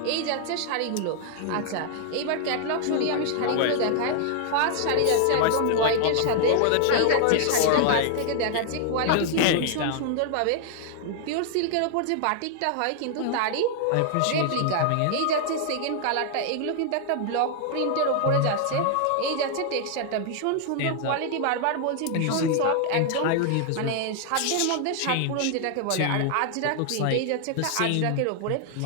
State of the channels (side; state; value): both; different; correlation 0.00